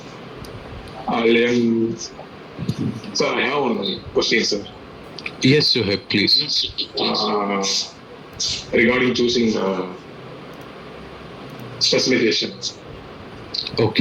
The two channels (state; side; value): identical; both; correlation 1.00